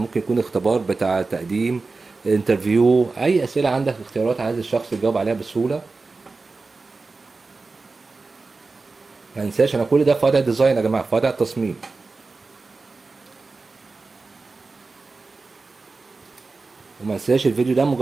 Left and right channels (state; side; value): quieter; left; 3.9 dB